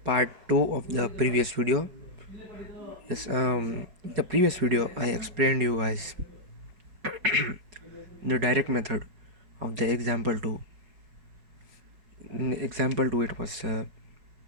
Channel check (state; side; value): late; left; 5.3 ms